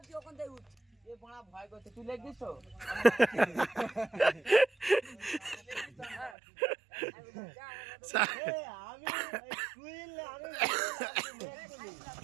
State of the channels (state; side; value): drops out; left; at 6.4 s